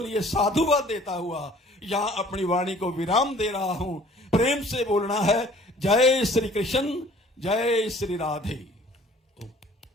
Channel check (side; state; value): both; normal; correlation 0.53